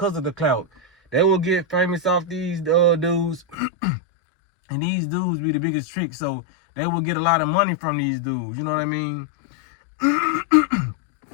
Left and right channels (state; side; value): drops out; right; at 3.6 s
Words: of the clout. They will get famous off these dudes. And these dudes be the biggest trick, so they will get a lot of money from these dudes. You know what I mean?